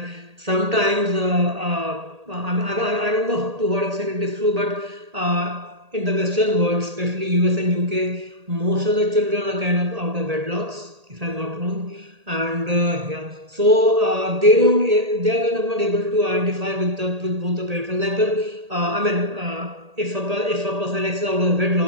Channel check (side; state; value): left; late; 1.8 ms